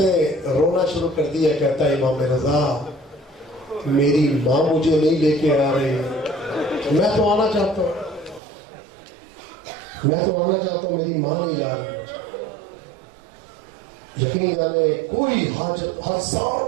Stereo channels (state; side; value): drops out; left; at 8.4 s